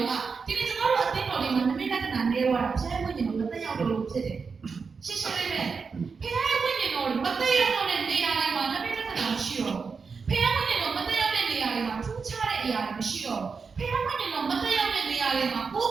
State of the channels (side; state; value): left; quieter; 5.2 dB